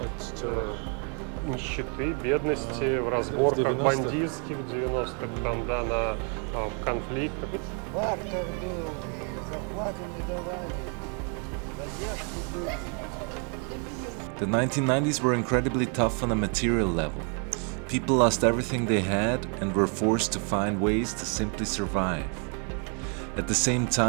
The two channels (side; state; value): left; quieter; 38.8 dB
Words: нищеты, бедности, в разборках бандитских в 90-х, там, да, на конфликтах. Бартер был, зарплаты не давали, задержки были. The 1990s were incredibly tough on a material level. People lost everything they had and were forced to find ways to simply survive. At the same